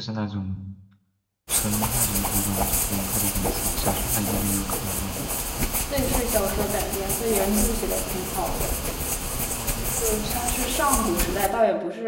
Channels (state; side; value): identical; both; correlation 1.00